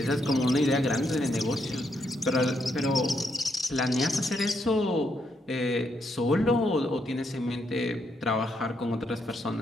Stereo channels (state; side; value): normal; both; correlation 0.77